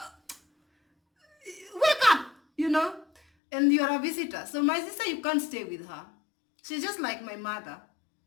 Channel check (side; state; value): right; drops out; at 3.2 s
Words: wake up, and you're a visitor. So my sister, you can't stay with her. She's just like my mother,